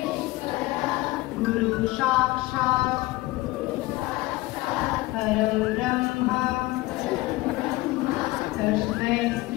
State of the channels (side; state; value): right; quieter; 19.6 dB